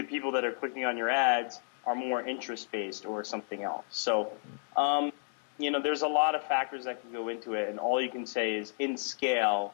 people that are clicking on your ads are more interest-based or something else. So, there's a lot of factors that can go into it, and all you can say is, in scale,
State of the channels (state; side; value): silent; right; 57 dB below the other